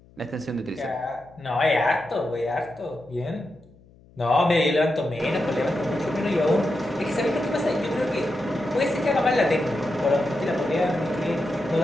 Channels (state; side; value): noise; left; hum, 27 dB below the sound